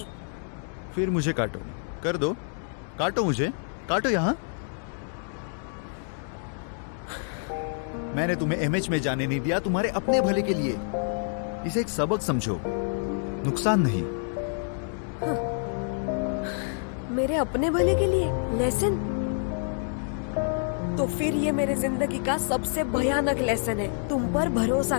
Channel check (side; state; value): right; silent; 59 dB below the other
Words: फिर मुझे काटो, कर दो, काटो मुझे, काटो यहाँ। मैंने तुम्हें एमएच में जाने नहीं दिया तुम्हारे अपने भले के लिए। इसे एक सबक समझो, नुकसान नहीं। मेरे अपने भले के लिए लेसन? तो फिर ये मेरे जिंदगी का सबसे भयानक लेसन है, तुम पर भरोसा